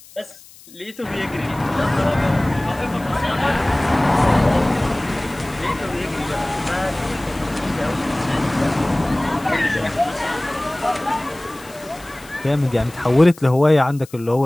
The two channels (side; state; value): left; noise; hiss, 22 dB below the sound